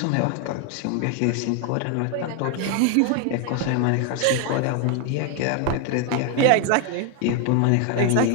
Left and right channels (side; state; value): both; different; correlation 0.01